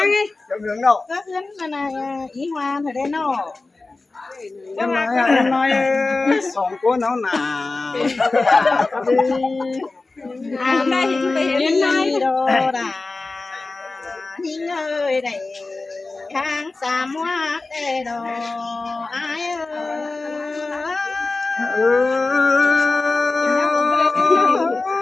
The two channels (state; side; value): quieter; right; 3.5 dB